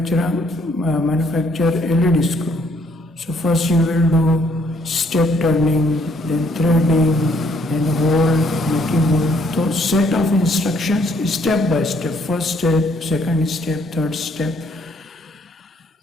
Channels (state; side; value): normal; both; correlation 0.67